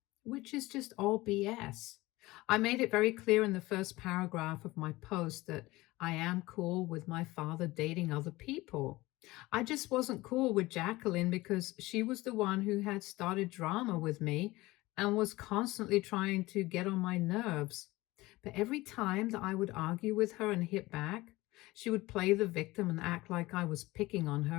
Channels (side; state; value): right; quieter; 19.8 dB